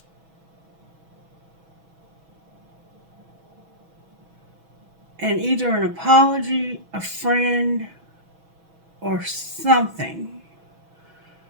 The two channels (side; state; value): left; late; 6.2 ms